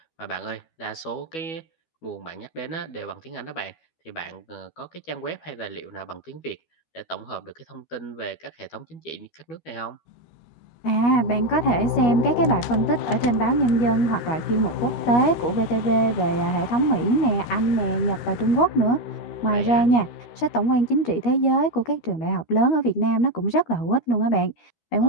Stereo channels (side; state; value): right; late; 12 ms